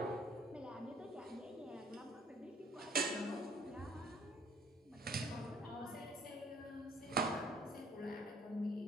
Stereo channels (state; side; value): normal; both; correlation 0.58